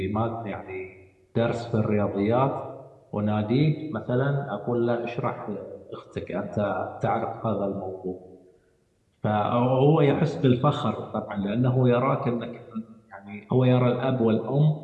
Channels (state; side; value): identical; both; correlation 1.00